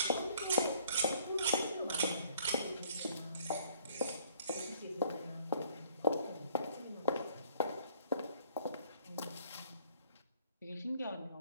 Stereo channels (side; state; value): both; inverted; correlation -0.60